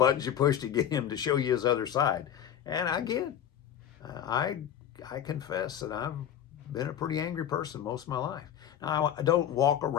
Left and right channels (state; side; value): quieter; right; 10.0 dB